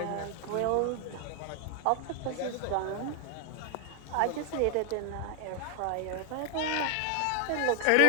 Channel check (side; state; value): both; different; correlation 0.00